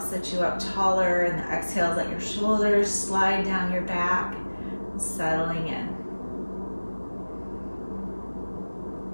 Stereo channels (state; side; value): inverted; both; correlation -1.00